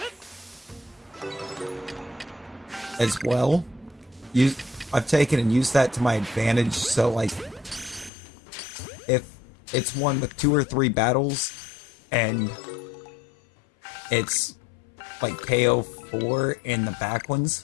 as well. I've taken and used that to my advantage, so like if it's one with 2 or 3 battles and it's like KO 4 in the back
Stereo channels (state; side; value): drops out; right; at 8.1 s